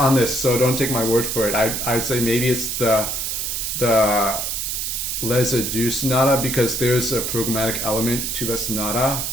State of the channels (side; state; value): right; noise; hiss, 2 dB below the sound